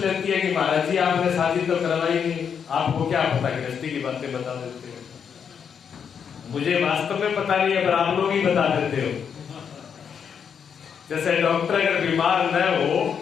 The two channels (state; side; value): quieter; right; 7.2 dB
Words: है कि महाराज जी आपने शादी तो करवाई नहीं, आपको क्या पता, गृहस्थी की बातें बता देते हो। मुझे वास्तव में पता नहीं है, पर आप लोग ही बता देते हो। जैसे डॉक्टर अगर बीमार न हो